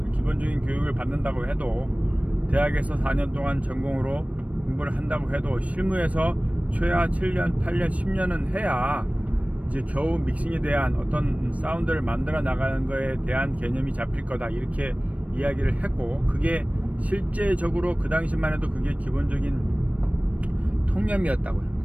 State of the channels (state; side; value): late; left; 0.066 ms